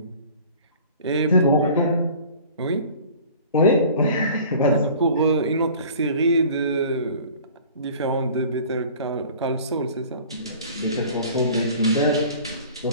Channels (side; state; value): both; inverted; correlation -0.46